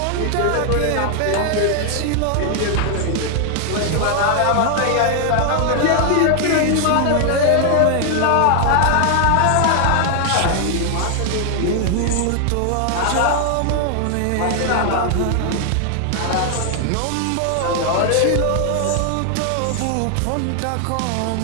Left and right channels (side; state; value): both; different; correlation 0.00